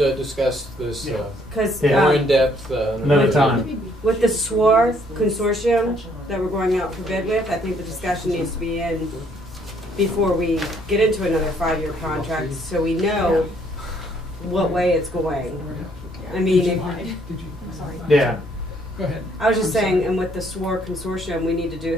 this Yeah. Cause, Yeah. more in depth Another time. with the SWAR consortium that we're going out for bid with, I think the discussion needs to be in before we get into another 5-year contract, so we know what way it's going. I mean, Did if, you? Yeah. Go ahead. I was just saying, and with the SWAR consortium, we need to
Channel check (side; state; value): both; normal; correlation 0.66